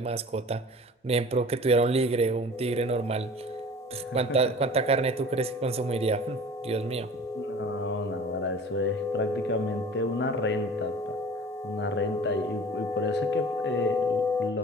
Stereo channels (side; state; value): both; normal; correlation 0.42